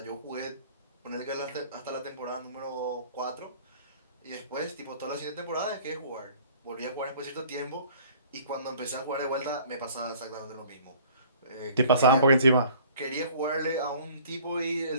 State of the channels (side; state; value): both; inverted; correlation -0.52